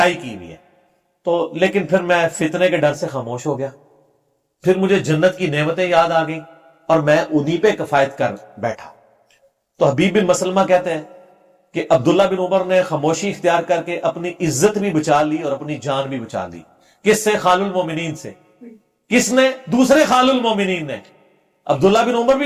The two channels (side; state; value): both; identical; correlation 1.00